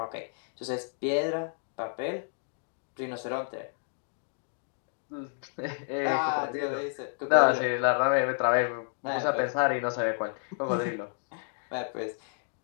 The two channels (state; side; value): silent; right; digital silence